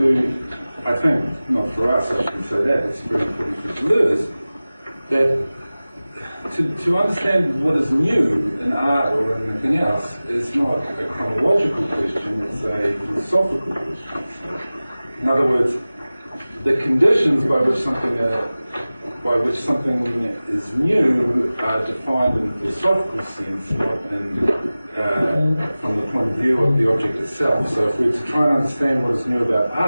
I think, not for us, I shouldn't say that, it's very important for Deleuze, that to understand what is new in art or in anything else is not a chronological question, it's a philosophical question. In other words, the conditions by which something is new are defined in a philosophical sense, not from the point of view of the object itself. So if we're to try and understand what is new about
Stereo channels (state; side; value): inverted; both; correlation -0.97